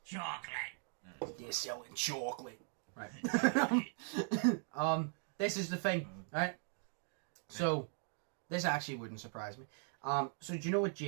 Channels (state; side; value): silent; left; 52 dB below the other